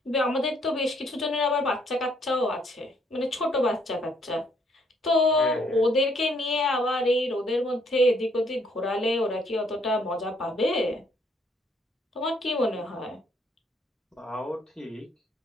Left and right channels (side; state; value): both; normal; correlation 0.68